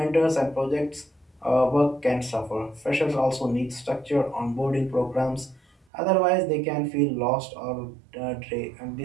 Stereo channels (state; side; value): drops out; left; at 5.9 s